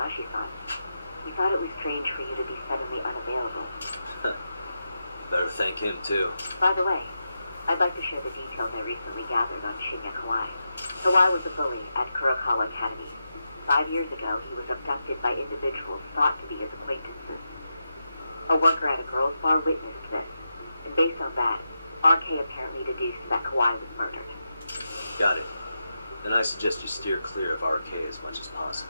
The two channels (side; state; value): both; inverted; correlation -0.88